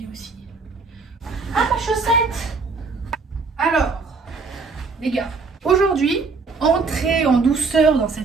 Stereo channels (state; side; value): quieter; left; 4.4 dB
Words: aussi. Ah, ma chaussette! Alors, les gars, aujourd'hui, entrez en douceur dans